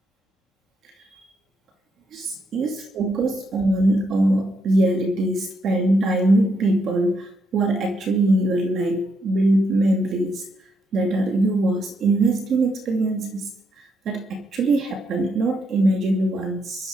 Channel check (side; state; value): both; normal; correlation 0.78